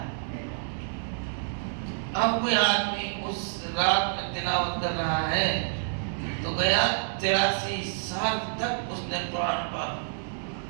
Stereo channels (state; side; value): silent; left; digital silence